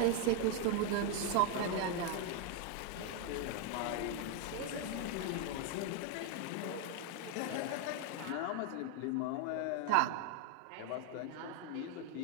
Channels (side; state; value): both; different; correlation 0.01